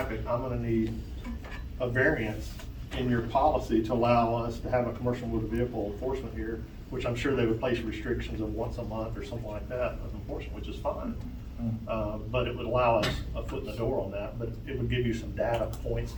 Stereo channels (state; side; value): identical; both; correlation 1.00